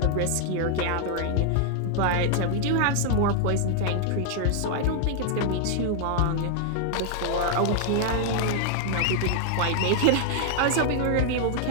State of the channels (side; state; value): both; different; correlation 0.00